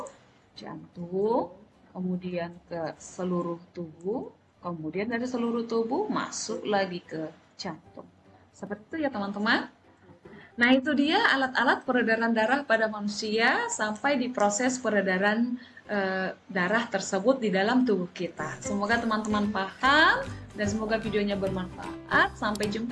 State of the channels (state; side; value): identical; both; correlation 1.00